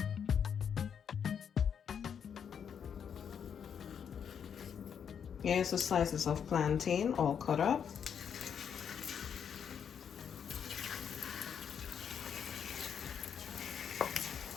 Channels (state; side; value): quieter; right; 7.7 dB